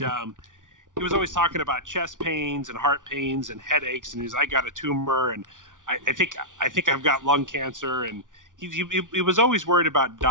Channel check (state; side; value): late; left; 0.88 ms